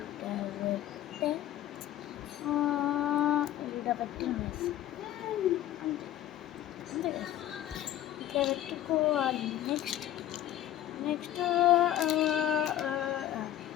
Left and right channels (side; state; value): right; quieter; 12.8 dB